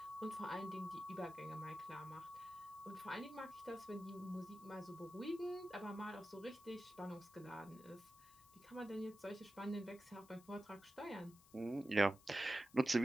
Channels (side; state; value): left; noise; hiss, 23 dB below the sound